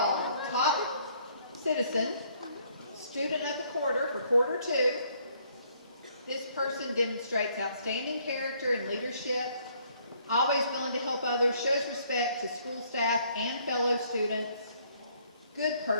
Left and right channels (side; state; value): both; inverted; correlation -0.65